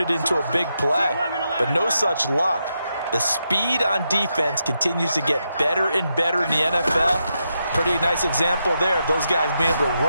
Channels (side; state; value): both; inverted; correlation -0.84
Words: it into a big play. But no such luck. The speed on defense continues to get better and better in the NFL. Pretty nice example there of those guys being able to